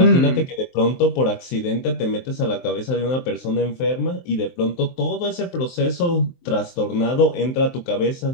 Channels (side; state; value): right; late; 23 ms